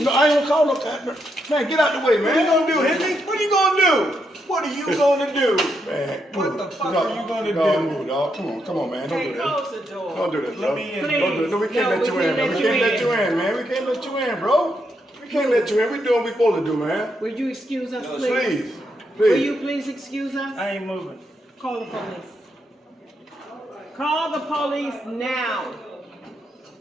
I ain't gonna call no. Man, get out the way, man. What are you gonna do, Henry? What are you gonna do? What are you gonna do? Man, What the fuck are you gonna dog, do? Move, dog. Come on, man. Don't Hey, do that. close the door. Don't do that, Let bro. me in. Don't do it. No, we can't No, let you we in, can't man. We let can't you let you in, man. We can't let you in, bro. We can't let you in. We doing what we supposed to do, man. Will you excuse us, please? Please, Will you please. please excuse us? I ain't moving. Call the police. Call the police now.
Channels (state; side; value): normal; both; correlation 0.80